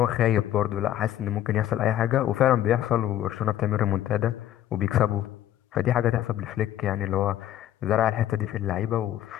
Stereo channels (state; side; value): quieter; right; 12.2 dB